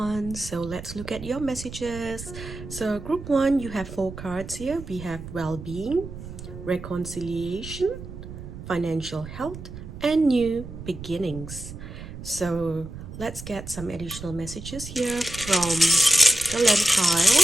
So let's look at your messages. So group 1, you have 4 cards here. We have well-being, reconciliation, financial health, and new beginnings. So let's get some additional messages here from the letter pile.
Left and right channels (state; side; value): noise; right; rumble, 12 dB below the sound